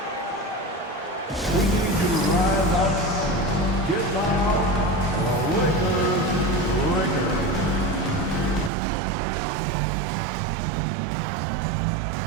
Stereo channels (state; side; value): drops out; left; at 8.7 s